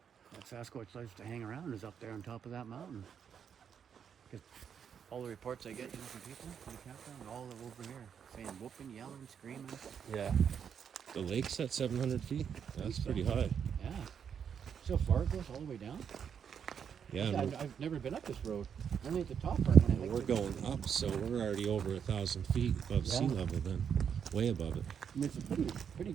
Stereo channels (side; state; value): left; quieter; 7.6 dB